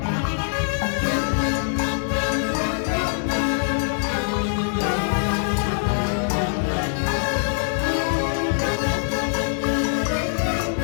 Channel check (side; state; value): right; silent; 63 dB below the other